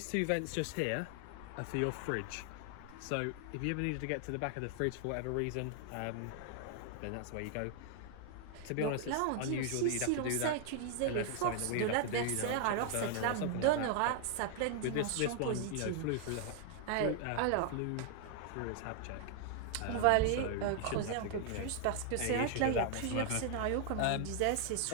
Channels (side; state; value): both; different; correlation 0.00